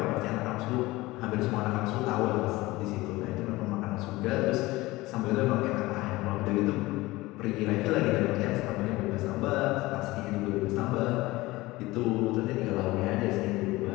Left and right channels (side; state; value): right; quieter; 19.9 dB